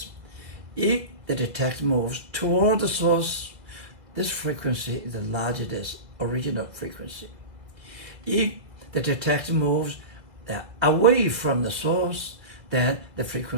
if the detector moves toward the source, this frequency is larger than the original frequency. If the detector moves away from the source, then the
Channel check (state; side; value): late; left; 1.8 ms